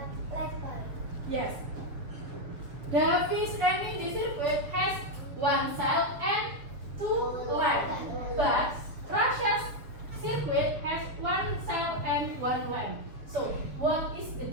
Yes. Davi's and Mindy circuit has one cell and two lamps. But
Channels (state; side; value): late; left; 7.3 ms